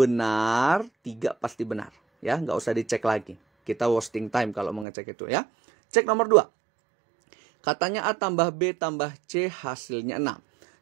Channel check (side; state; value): left; drops out; at 4.9 s